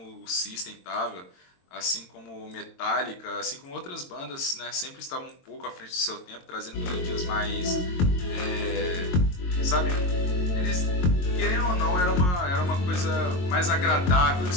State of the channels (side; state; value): right; late; 22 ms